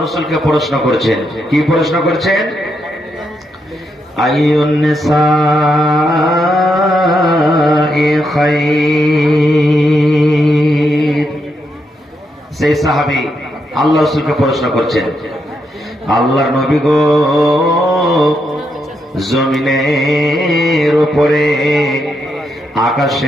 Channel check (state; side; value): normal; both; correlation 0.81